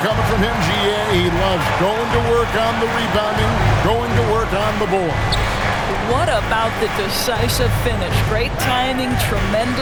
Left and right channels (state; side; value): identical; both; correlation 1.00